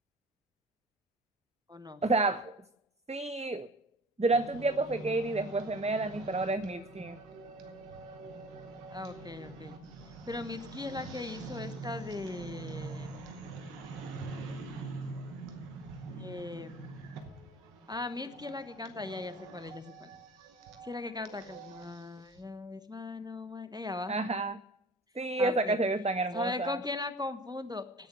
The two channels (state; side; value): normal; both; correlation 0.44